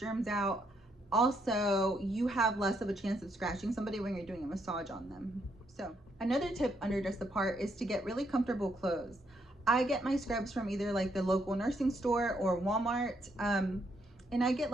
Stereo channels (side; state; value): both; normal; correlation 0.75